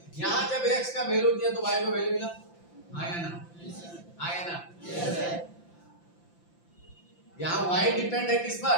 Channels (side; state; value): right; late; 5.8 ms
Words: यहाँ जब x का वैल्यू दिया तो y को वैल्यू मिला, हाँ है ना, हाँ है ना। यहाँ y डिपेंड है किस पर,